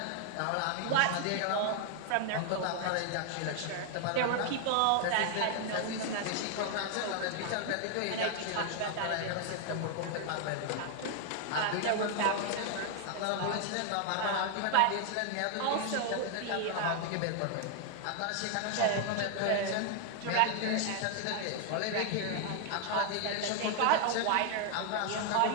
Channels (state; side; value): different; both; correlation 0.00